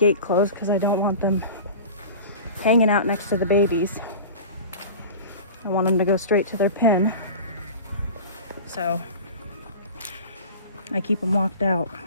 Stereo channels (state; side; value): inverted; both; correlation -0.36